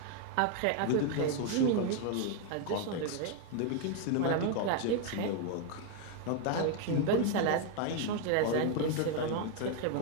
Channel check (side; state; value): both; different; correlation 0.01